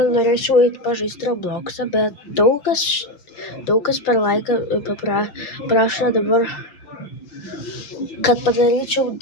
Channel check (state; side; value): late; right; 5.7 ms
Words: norėčiau eiti pažaisti Robloxą, bet daug kas per laiką prašo dabar, kad padaryčiau